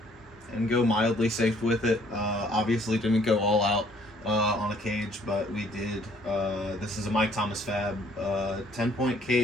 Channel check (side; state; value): both; normal; correlation 0.61